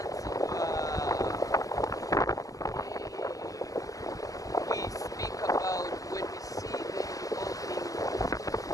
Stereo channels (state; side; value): late; right; 0.17 ms